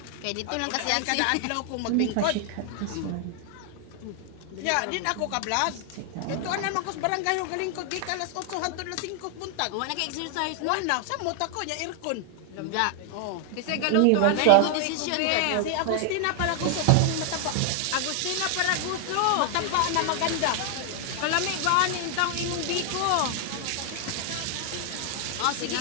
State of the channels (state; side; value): different; both; correlation 0.00